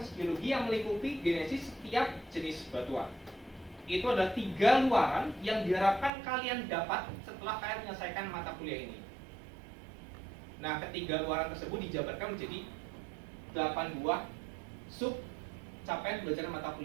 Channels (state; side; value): drops out; left; at 6.1 s